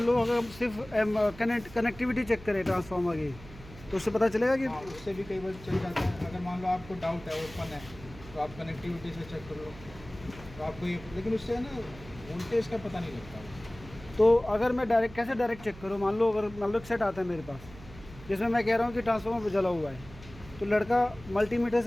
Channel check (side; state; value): right; noise; hum, 18 dB below the sound